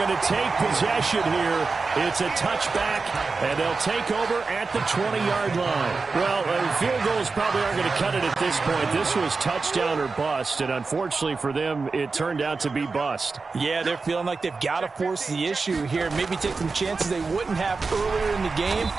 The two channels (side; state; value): left; quieter; 4.3 dB